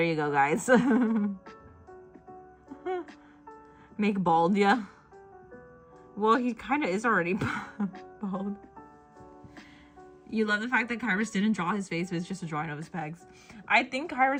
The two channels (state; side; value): identical; both; correlation 1.00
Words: you go, guys. Make bald, yeah. Well, he kind of is already bald. You love the fact that Kairos didn't draw his face. It was just a drawing of his pegs. I think